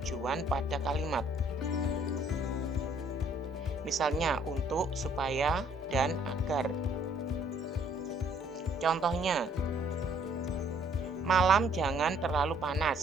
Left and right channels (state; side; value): normal; both; correlation 0.63